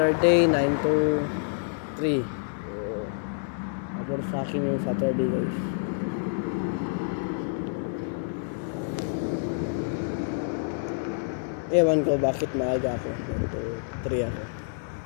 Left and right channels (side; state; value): right; silent; digital silence